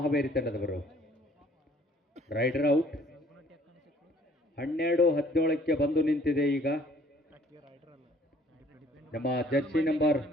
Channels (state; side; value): normal; both; correlation 0.58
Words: ಹಾವೇರಿ ತಂಡದವರು. Rider out. 12-17ಕ್ಕೆ ಬಂದು ನಿಂತಿದೆ. ಈಗ ನಮ್ಮ ಜರ್ಸಿ ನಂಬರ್